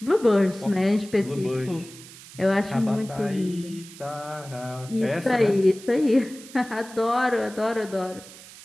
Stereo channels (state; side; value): noise; right; hiss, 18 dB below the sound